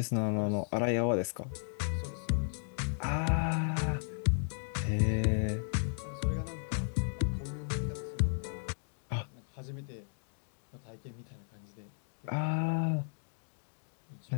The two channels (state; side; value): silent; right; digital silence